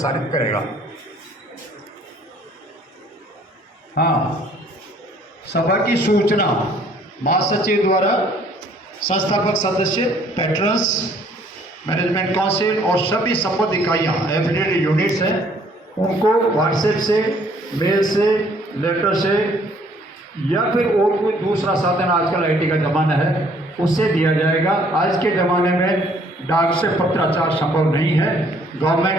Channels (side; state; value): both; normal; correlation 0.61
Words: करेगा। हाँ, सभा की सूचना महासचिव द्वारा संस्थापक सदस्य, पैट्रन्स, मैनेजमेंट काउंसिल और सभी संबद्ध इकाइयाँ एफिलिएटेड यूनिट्स हैं, उनको व्हाट्सएप से, मेल से, लेटर से या फिर और कोई दूसरा साधन, आजकल IT का ज़माना है, उससे दिया जाएगा। आज के ज़माने में डाक से पत्राचार संभव नहीं है।